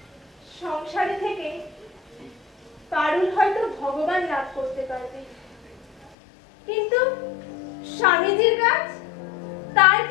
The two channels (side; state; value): right; drops out; at 6.2 s